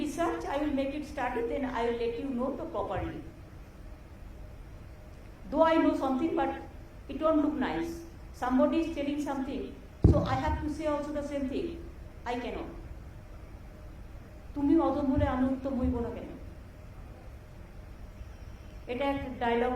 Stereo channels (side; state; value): both; identical; correlation 1.00